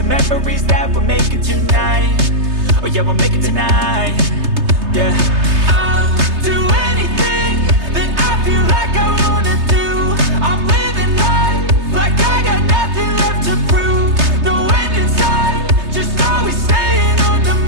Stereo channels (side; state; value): left; late; 3.3 ms